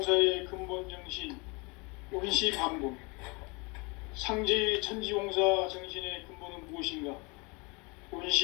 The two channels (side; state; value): right; quieter; 28.6 dB